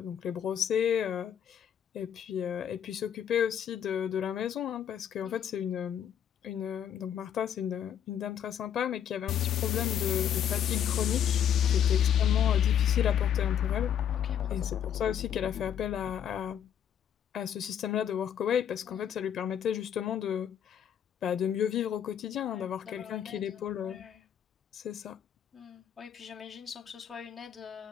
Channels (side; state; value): right; quieter; 9.1 dB